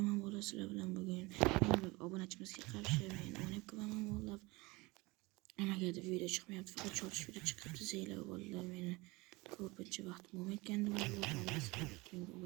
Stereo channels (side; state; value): left; quieter; 23.5 dB